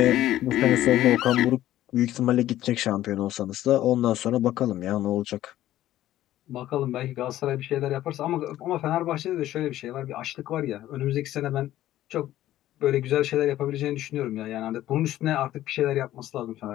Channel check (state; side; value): quieter; right; 13.8 dB